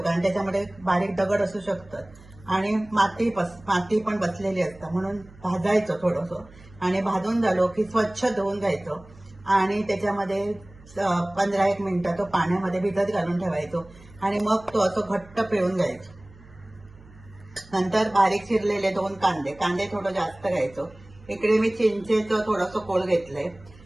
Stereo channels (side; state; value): right; noise; hum, 23 dB below the sound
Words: त्याच्यामध्ये बारीक दगड असू शकतात आणि माती पण बसलेली असतं, म्हणून भाजायचं थोडंसं. आणि भाजून झालो की स्वच्छ धुवून घ्यायचं आणि त्याच्यामध्ये 15-1 मिनिटं तो पाण्यामध्ये भिजत घालून ठेवायचो आणि मग तो असं घट्ट पिळून घ्यायचो. नंतर बारीक चिरलेले 2 कांदे थोडं जास्त घ्यायचो. इकडे मी चिंचेचं थोडंसं कोळ घेतलंय.